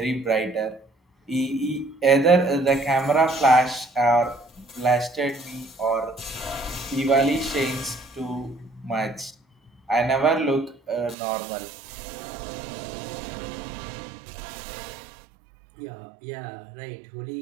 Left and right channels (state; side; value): drops out; left; at 11.2 s